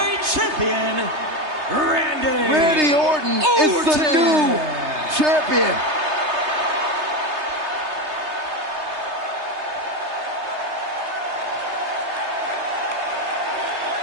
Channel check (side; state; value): left; late; 3.3 ms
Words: champion, Randy Orton is the new champion.